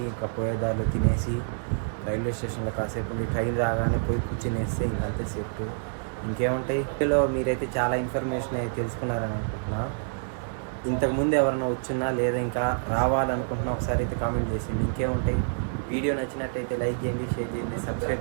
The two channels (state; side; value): silent; left; 60 dB below the other